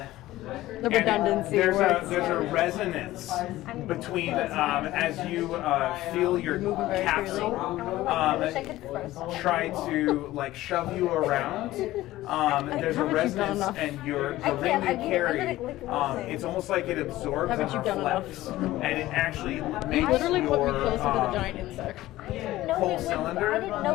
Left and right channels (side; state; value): right; quieter; 16.2 dB